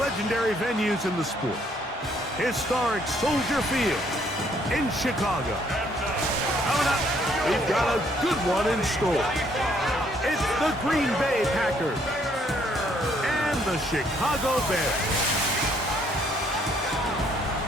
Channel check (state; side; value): normal; both; correlation 0.67